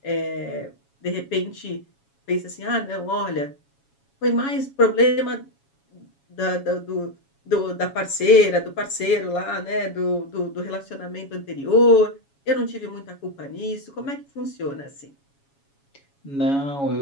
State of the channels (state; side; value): late; right; 7.2 ms